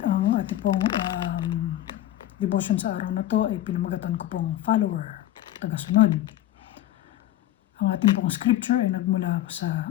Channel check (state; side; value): quieter; right; 13.5 dB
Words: Ang ating pong devotion sa araw na to ay pinamagatan ko pong follower, tagasunod. Ang ating pong scripture ay nagmula sa